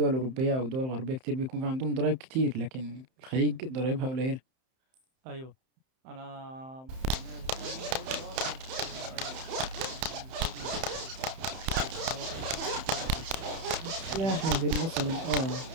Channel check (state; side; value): late; left; 31 ms